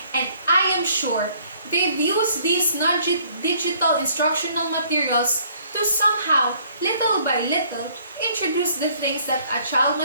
and I am sure they've used these non-digital instructional materials to somehow, little by little, introduce the things that a child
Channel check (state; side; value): inverted; both; correlation -0.61